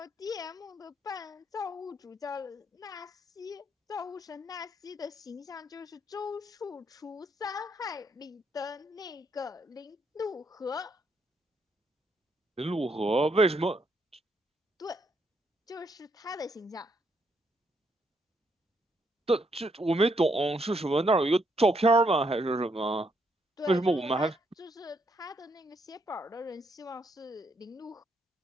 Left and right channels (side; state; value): both; normal; correlation 0.75